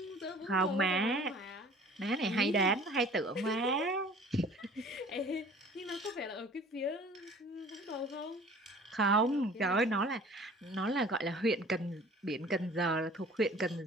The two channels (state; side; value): normal; both; correlation 0.48